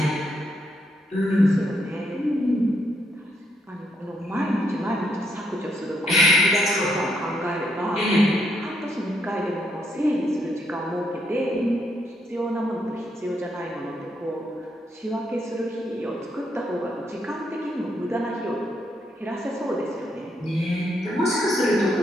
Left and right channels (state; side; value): normal; both; correlation 0.76